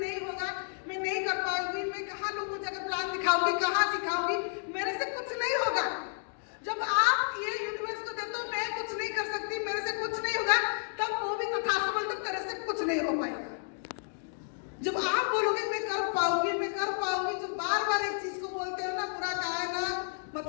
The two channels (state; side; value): silent; right; digital silence